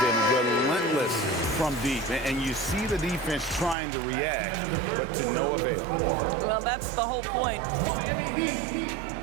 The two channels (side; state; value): left; drops out; at 3.8 s